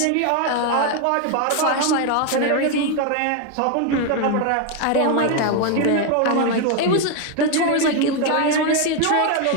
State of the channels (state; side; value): different; both; correlation 0.01